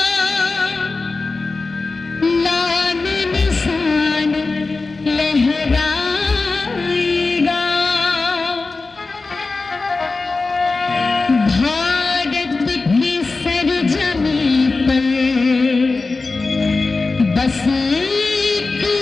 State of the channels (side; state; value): right; quieter; 3.8 dB